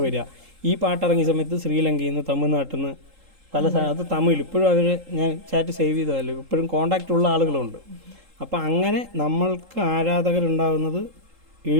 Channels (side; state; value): left; late; 3.8 ms